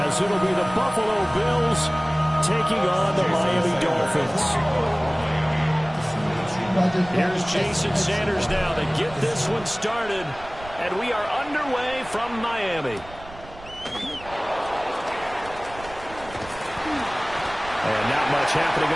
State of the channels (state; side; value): noise; right; rumble, 18 dB below the sound